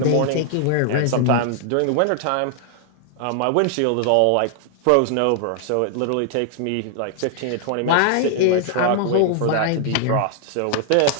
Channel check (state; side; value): different; both; correlation 0.00